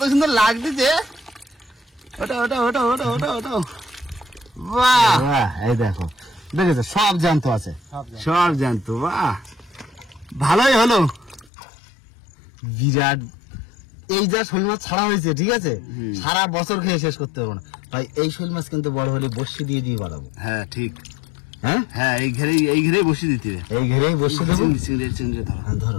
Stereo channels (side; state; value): right; drops out; at 11.5 s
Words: সুন্দর লাগতেছে। ওটা। বাহ, এই দেখো, দেখেছো সব জ্যান্ত আছে, সব জানতো। বাহ, ভালোই হলো। বিরাট। এই যা শোল মাছ ছাড়া হয়েছে, ঠিক আছে, সারা বছর খেয়ে শেষ করতে পারবো না। তাই এই শোল মাছ কিন্তু বড় হলে বসি দিয়ে বাড়াবো। হ্যাঁ, ঠিক। হ্যাঁ, এই ঘেরেই বসিয়ে দিতে হবে। এই ঘেরেই বসে দেবো। চিংড়ি ধরো। হ্যাঁ,